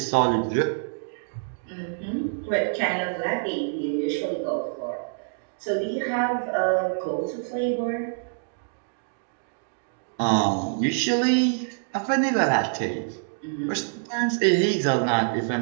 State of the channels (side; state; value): left; silent; digital silence